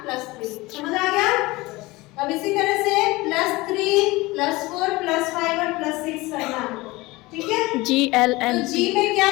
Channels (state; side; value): quieter; right; 21.2 dB